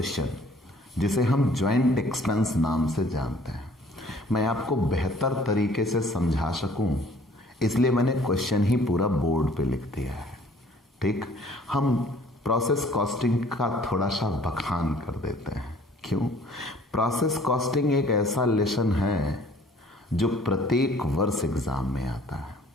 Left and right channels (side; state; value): both; normal; correlation 0.56